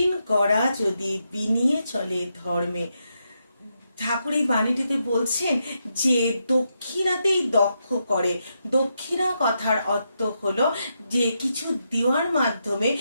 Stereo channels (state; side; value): inverted; both; correlation -0.83